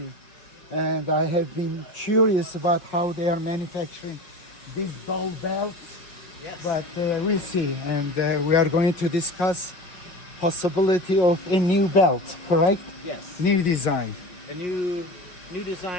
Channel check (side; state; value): right; late; 5.5 ms